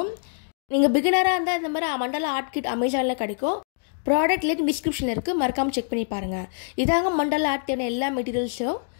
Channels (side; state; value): right; silent; digital silence